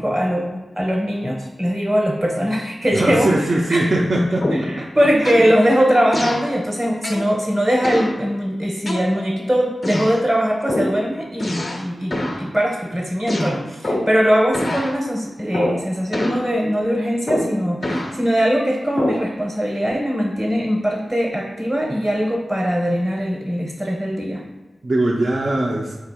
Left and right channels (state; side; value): normal; both; correlation 0.95